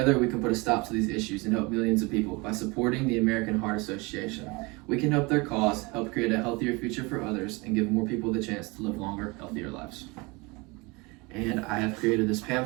we can put a stop to these issues and help millions of people by supporting the American Heart Association. We can help their cause, help create a healthier future for others, and give more people the chance to live longer, healthier lives. And I have created this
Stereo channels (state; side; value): quieter; left; 26.3 dB